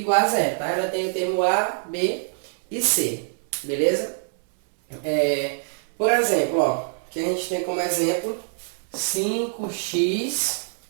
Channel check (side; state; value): left; silent; 60 dB below the other